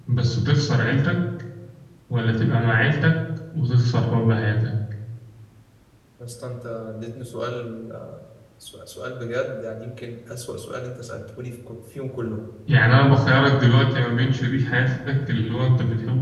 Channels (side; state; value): both; identical; correlation 1.00